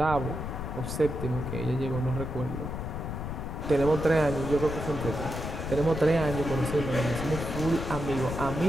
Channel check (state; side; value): noise; left; rumble, 5 dB below the sound